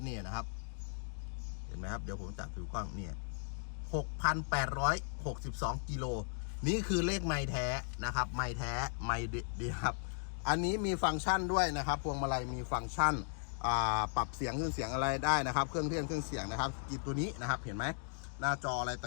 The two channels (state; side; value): silent; right; digital silence